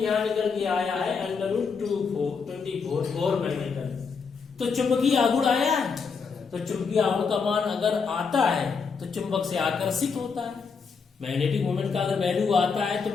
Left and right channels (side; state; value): right; quieter; 5.4 dB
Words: यहाँ निकल के आया है √24 मैग्नेटन। तो चुंबकीय आघूर्ण आया है, तो चुंबकीय आघूर्ण का मान अगर आता है तो चुंबक से आकर्षित होता है। मैग्नेटिक मूवमेंट का अगर वैल्यू आता है तो